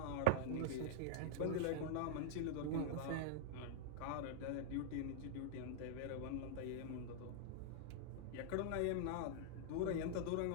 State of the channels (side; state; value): both; different; correlation -0.01